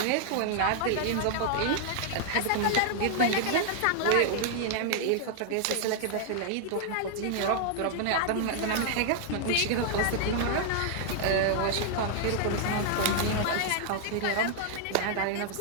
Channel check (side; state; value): both; different; correlation 0.00